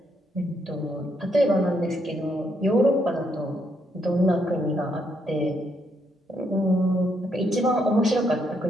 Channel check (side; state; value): both; normal; correlation 0.75